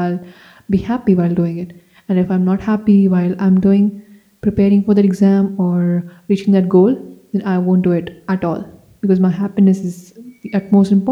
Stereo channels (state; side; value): identical; both; correlation 1.00